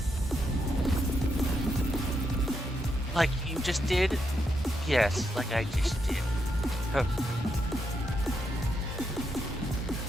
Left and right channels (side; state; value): both; normal; correlation 0.81